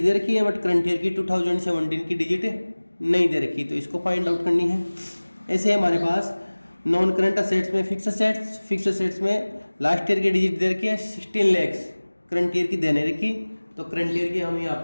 दे रखी है बट करंट ईयर की 2017 की डिजिट नहीं दे रखी, तो इसको फाइंड आउट करनी है। ऐसे हमारे पास नॉन करंट असेट्स में फिक्स असेट्स में लास्ट ईयर की डिजिट दे रखी है 16 लाख, करंट ईयर की देने रखी, तो करंट ईयर की हम यहाँ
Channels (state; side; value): inverted; both; correlation -1.00